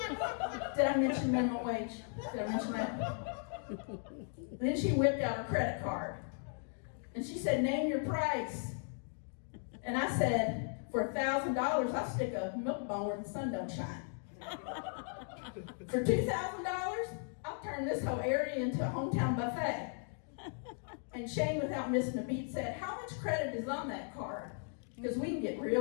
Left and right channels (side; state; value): right; silent; 53 dB below the other